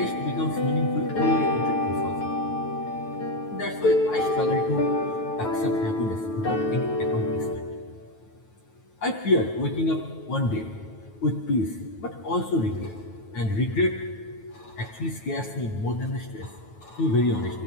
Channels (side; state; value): right; late; 9.2 ms